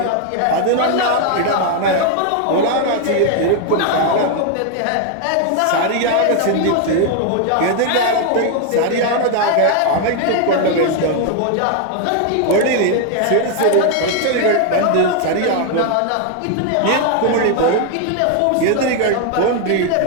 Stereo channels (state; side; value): different; both; correlation 0.00